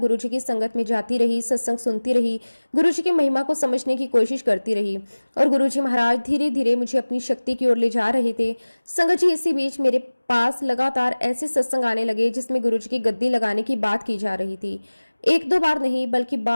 की संगत में जाती रही, सत्संग सुनती रही, गुरुजी की महिमा को समझने की कोशिश करती रही, और गुरुजी महाराज धीरे धीरे मुझे अपनी शक्ति की ओर ले जा रहे थे। संगत जी, इसी बीच मेरे पास लगातार ऐसे सत्संग आने लगे जिसमें गुरुजी की गद्दी लगाने की बात की जा रही थी। एक दो बार नहीं, बल्कि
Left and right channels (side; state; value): both; inverted; correlation -1.00